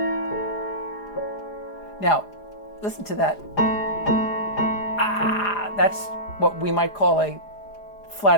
Now, listen to that. That's what we might call a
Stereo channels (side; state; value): right; late; 4.9 ms